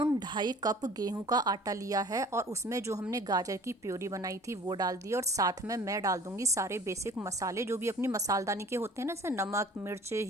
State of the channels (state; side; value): normal; both; correlation 0.48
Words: 2.5 कप गेहूं का आटा लिया है, और उसमें जो हमने गाजर की प्योरी बनाई थी वो डाल दी। और साथ में मैं डाल दूंगी सारे बेसिक मसाले जो भी अपनी मसालदानी के होते हैं ना, जैसे नमक, मिर्च,